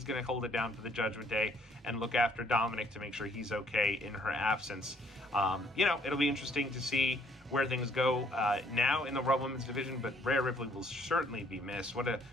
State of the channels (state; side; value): normal; both; correlation 0.64